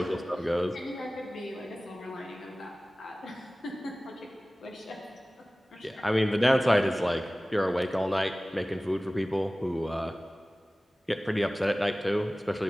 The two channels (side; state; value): both; normal; correlation 0.98